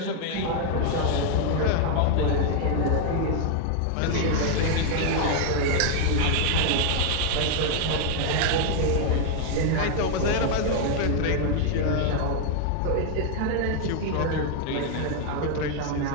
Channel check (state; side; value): different; both; correlation 0.00